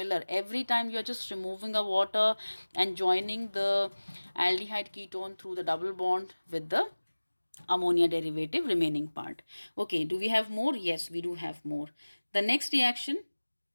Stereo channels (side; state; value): both; inverted; correlation -1.00